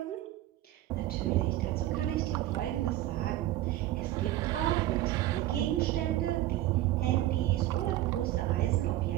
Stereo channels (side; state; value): left; quieter; 14.9 dB